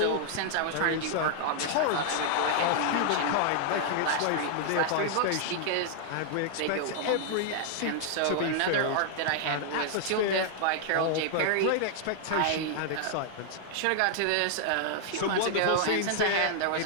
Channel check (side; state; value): both; different; correlation -0.01